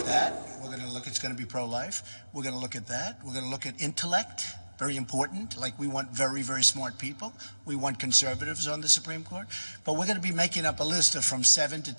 that. We're going to look, it's going to be pro-life. We're going to look at that. We're going to look at intellect, very important. Like, we want very, very smart people. We want conservatives on the Supreme Court. But we're going to be making up a list of from 7 to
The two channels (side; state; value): both; inverted; correlation -0.99